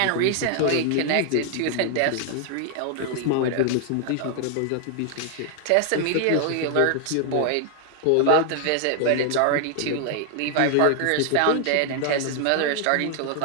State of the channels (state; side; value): different; both; correlation 0.00